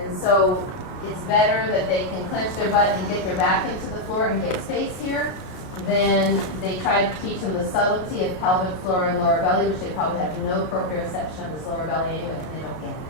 so it's better that they can clench their butt and get their back into the floor and get space here. Then they try to teach them the subtlety of pelvic floor and lower belly, which they probably have no proprioception of this lower belly anyway, and they don't get it.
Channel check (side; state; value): right; late; 33 ms